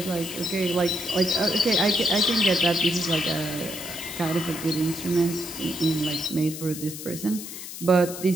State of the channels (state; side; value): noise; left; hiss, 10 dB below the sound